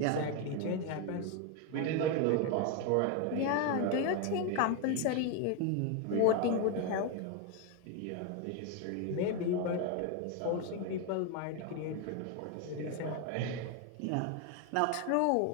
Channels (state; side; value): different; both; correlation 0.01